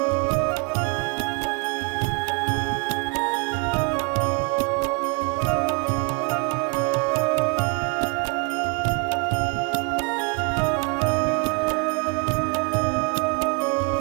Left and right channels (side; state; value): left; quieter; 32.2 dB